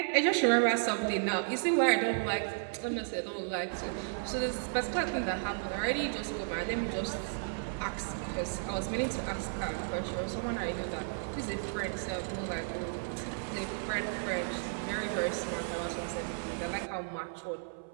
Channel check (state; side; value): silent; left; 55 dB below the other